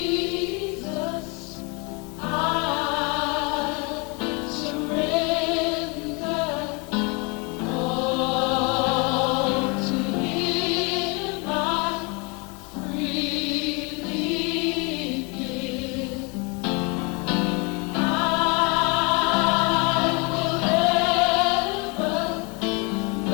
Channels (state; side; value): quieter; right; 30.7 dB